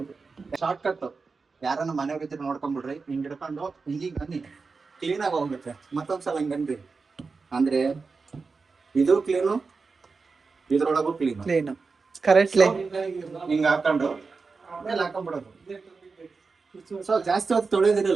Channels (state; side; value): quieter; left; 4.5 dB